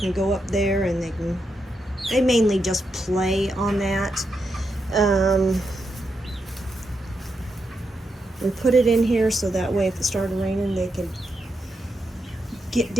go up there and they mainly just play on that. We put it in here so that way if it started raining they could get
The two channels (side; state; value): both; normal; correlation 0.84